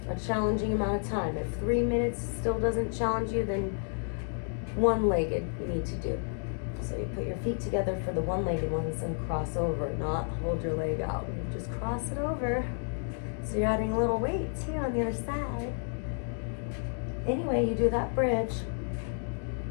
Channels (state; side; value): silent; right; 57 dB below the other